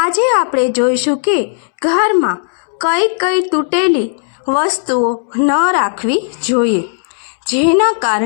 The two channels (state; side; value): silent; right; 70 dB below the other